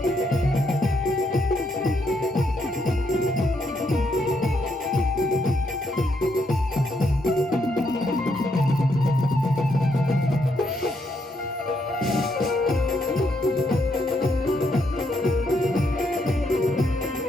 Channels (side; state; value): both; normal; correlation 0.76